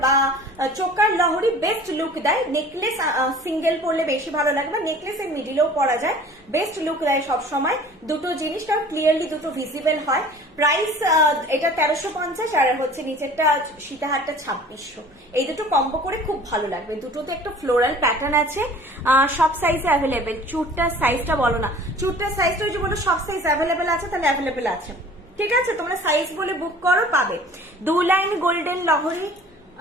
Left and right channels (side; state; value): both; normal; correlation 0.47